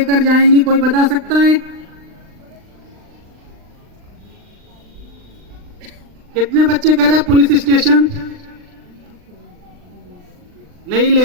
जाएंगी, कोई बता सकता है? कितने बच्चे कह रहे हैं पुलिस स्टेशन? नहीं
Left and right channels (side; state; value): left; late; 39 ms